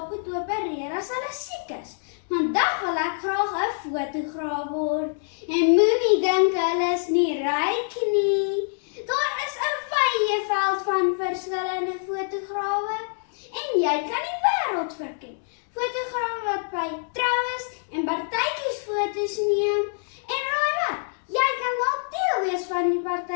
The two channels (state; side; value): silent; right; digital silence